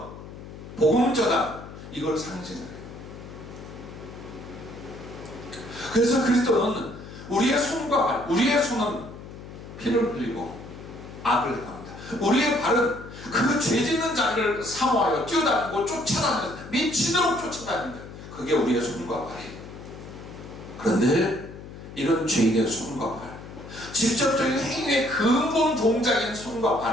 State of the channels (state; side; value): noise; left; hum, 14 dB below the sound